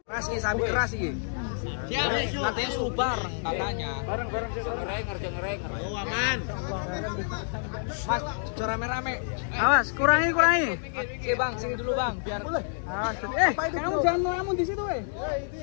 Keras nih, sapi keras nih. Katanya suruh bareng katanya. Bareng. Ngerenger. Oh aman. Mas, rame-rame. Awas, kurangi. Oke bang, sini dulu bang, biar. Awas, kamu jangan melamun di situ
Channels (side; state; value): right; silent; digital silence